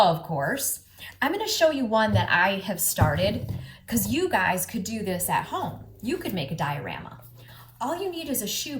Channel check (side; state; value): both; identical; correlation 1.00